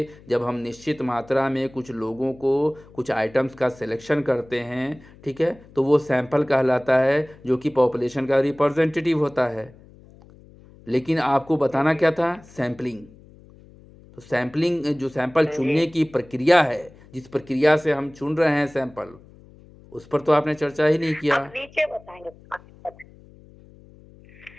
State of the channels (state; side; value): noise; left; hum, 24 dB below the sound